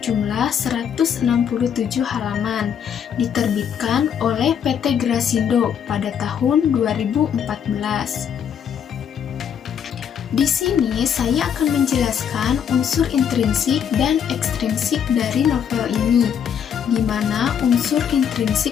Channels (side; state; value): right; quieter; 8.2 dB